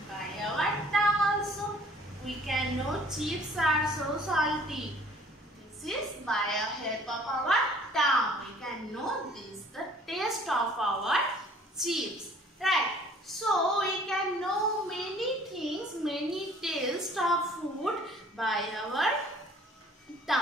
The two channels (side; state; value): both; normal; correlation 0.54